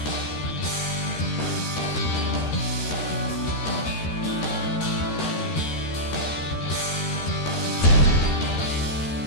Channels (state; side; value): late; right; 13 ms